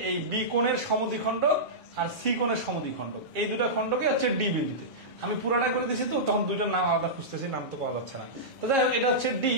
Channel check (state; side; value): normal; both; correlation -0.15